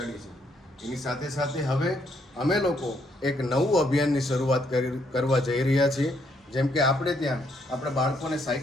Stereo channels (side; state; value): both; normal; correlation 0.72